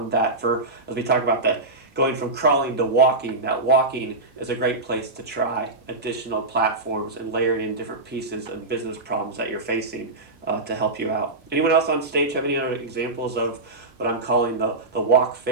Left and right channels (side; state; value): left; quieter; 3.0 dB